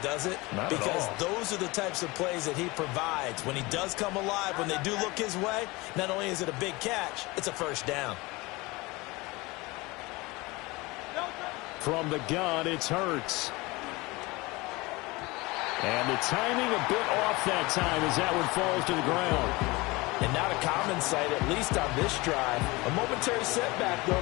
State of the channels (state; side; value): quieter; right; 23.1 dB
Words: it? Not because at all. Those are the types of plays that he provides. When he does come alive, when they do look his way, not only is it a big catch, it's a first down. From the gun, it's Hurts. And the timing a bit off that time as that one falls to the ground. And not a common sight, at least on this drive. A momentary setback, though,